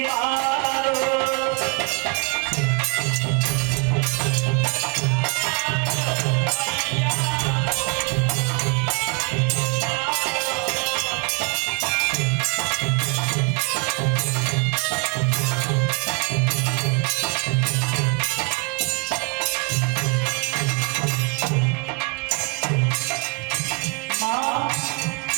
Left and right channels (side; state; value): left; quieter; 31.2 dB